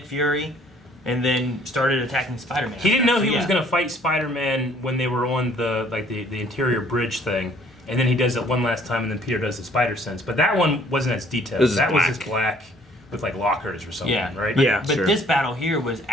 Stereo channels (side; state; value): both; normal; correlation 0.59